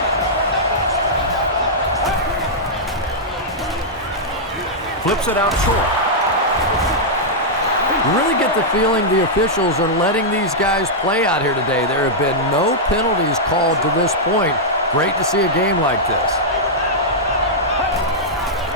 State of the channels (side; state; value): both; normal; correlation -0.08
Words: Flips it out short. You really get the feeling the officials are letting these guys play out here today. There have been no penalties called to this point. Great to see a game like this.